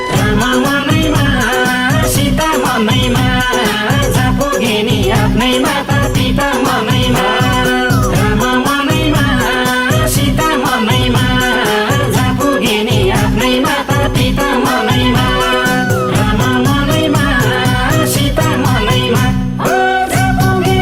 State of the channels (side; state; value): both; identical; correlation 1.00